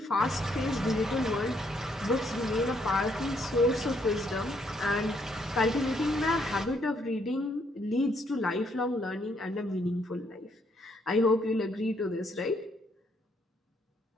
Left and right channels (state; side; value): normal; both; correlation 0.71